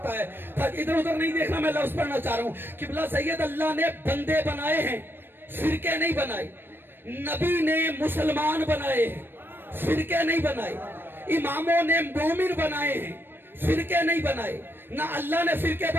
ہے. ادھر ادھر نہیں دیکھنا. میں لفظ پڑھنا چاہ رہا ہوں. قبلہ سید اللہ نے بندے بنائے ہیں، فرقے نہیں بنائے. نبی نے مسلمان بنائے ہیں، فرقے نہیں بنائے. اماموں نے مومن بنائے ہیں، فرقے نہیں بنائے. نہ اللہ نے فرقے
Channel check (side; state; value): left; late; 0.098 ms